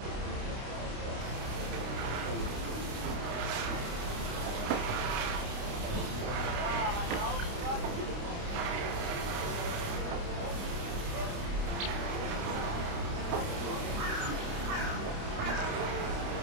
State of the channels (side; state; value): left; late; 29 ms